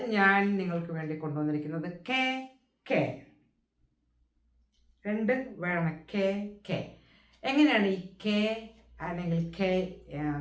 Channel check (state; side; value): identical; both; correlation 1.00